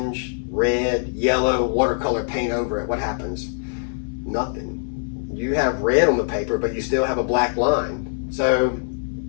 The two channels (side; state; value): right; silent; 64 dB below the other